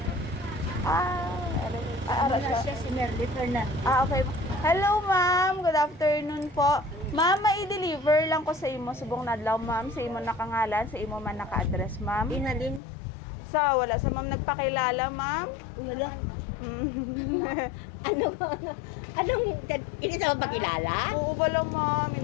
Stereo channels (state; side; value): drops out; right; at 12.8 s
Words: Ara siya. Si Merly Fernandez. Okay. Hello ma'am, good afternoon po. Ma'am, mai-deliver lang ko sa imo subong nadlaw ma'am, sa imo nakangalan, sa imo man naka-address ma'am. Inalin. Wala sa ma'am nagpakilala ma'am. Wala. Anong, hindi sa magpakilala? Oo ba lang ma'am,